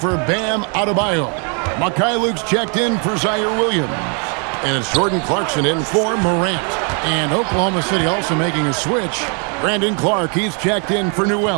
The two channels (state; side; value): quieter; left; 38.5 dB